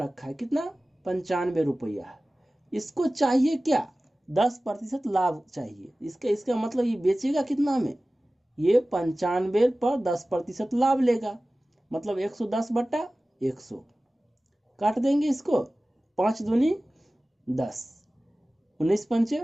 है कितना? 95 रुपया। इसको चाहिए क्या? 10% लाभ चाहिए। इसका मतलब ये बेचेगा कितना में? ये 95 पर 10% लाभ लेगा, मतलब 110/100। काट देंगे इसको, 5 दूनी 10, 19 पंचे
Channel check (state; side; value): normal; both; correlation 0.97